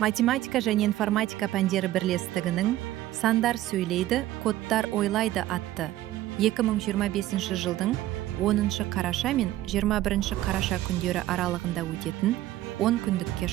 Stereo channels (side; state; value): left; quieter; 14.7 dB